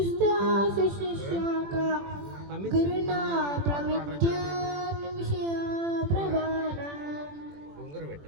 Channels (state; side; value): late; left; 21 ms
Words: गुरुना प्रविद्यान् विषया प्रवाना.